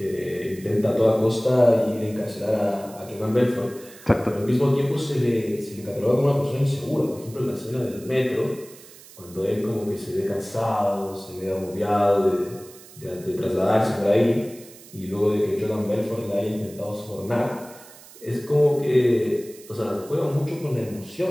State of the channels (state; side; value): noise; right; hiss, 20 dB below the sound